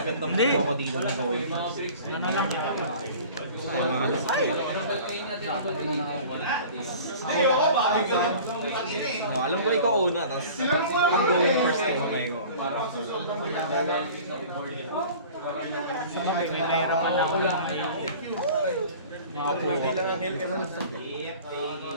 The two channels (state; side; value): inverted; both; correlation -0.43